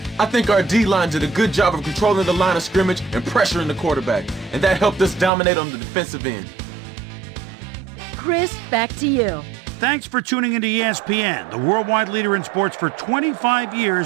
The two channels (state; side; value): drops out; left; at 5.3 s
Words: I think our D-line did a good job of controlling the line of scrimmage and pressuring the quarterback, and that helped us dominate on the defensive end. Chris, back to you. Thanks for tuning into ESPN, the worldwide leader in sports for 25